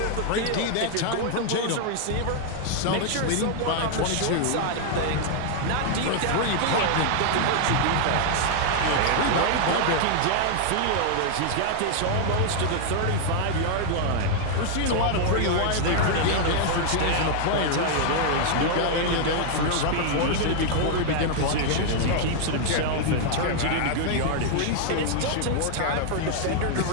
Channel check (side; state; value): both; different; correlation 0.00